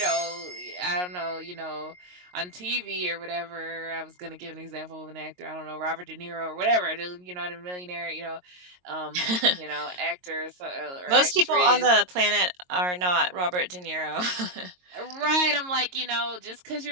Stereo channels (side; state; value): left; late; 22 ms